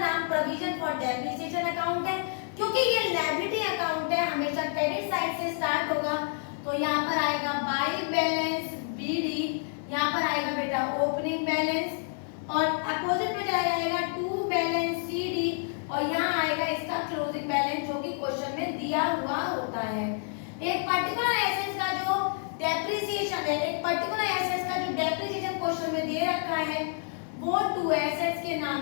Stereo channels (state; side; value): silent; right; 59 dB below the other